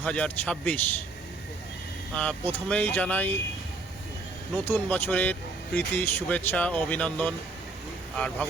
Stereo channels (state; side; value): quieter; left; 3.4 dB